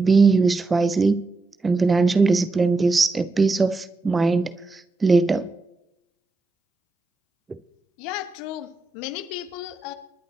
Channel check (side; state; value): left; quieter; 3.6 dB